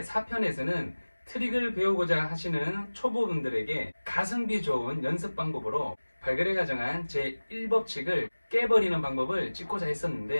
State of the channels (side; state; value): both; inverted; correlation -1.00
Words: 4편에서는 트릭을 배우고자 하시는 초보분들에게 가성비 좋은 연습 방법으로 발걸에 가정한 제1법칙을 깨버리는 방법을 찍고자